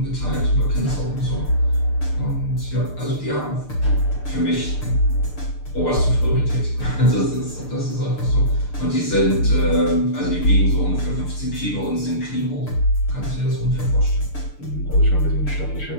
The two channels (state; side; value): late; right; 6.8 ms